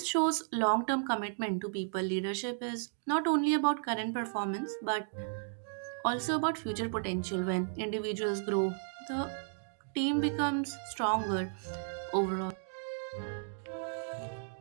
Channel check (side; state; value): left; silent; digital silence